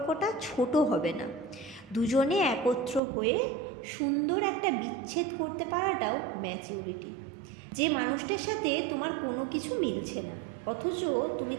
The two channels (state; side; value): drops out; left; at 3.0 s